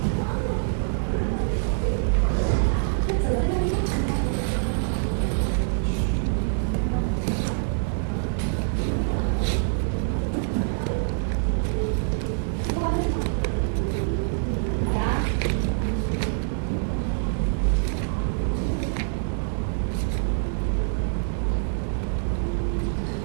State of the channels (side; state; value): left; silent; digital silence